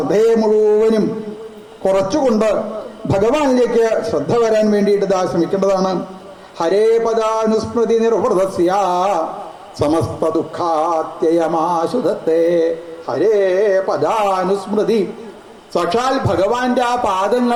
മുഴുവനും കുറച്ചുകൊണ്ട് ഭഗവാനിലേക്ക് ശ്രദ്ധ വരാൻ വേണ്ടിയിട്ട് ശ്രമിക്കേണ്ടതാണ്. ഹരേ പദാനുസ്മൃതി നിർവൃതസ്യ സമസ്ത ദുഃഖാത്യയമാശുധത്തെ. ഹരേ പദാനുസ്മൃതി, സാക്ഷാൽ ഭഗവാന്റെ ആ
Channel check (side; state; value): both; identical; correlation 1.00